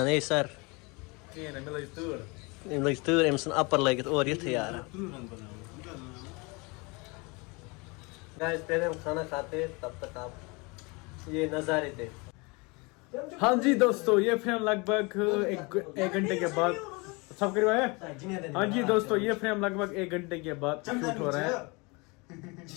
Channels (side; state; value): right; quieter; 28.0 dB